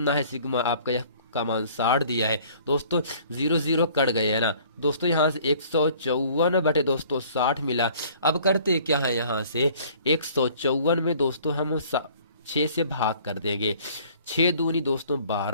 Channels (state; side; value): inverted; both; correlation -0.54